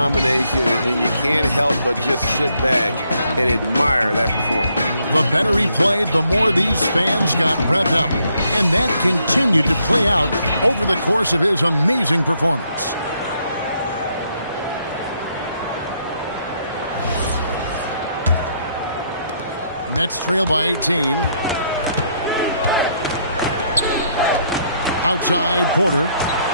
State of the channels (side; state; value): both; inverted; correlation -0.72